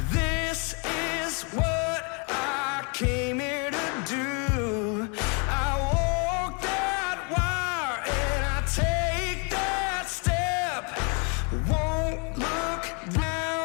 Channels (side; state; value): right; quieter; 35.7 dB